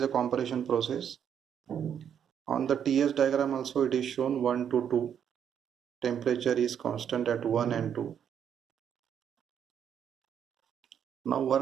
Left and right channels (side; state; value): left; quieter; 8.6 dB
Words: compression process. On the TS diagram also it is shown 1 to 2. Temperature is constant at 1 and 2. Now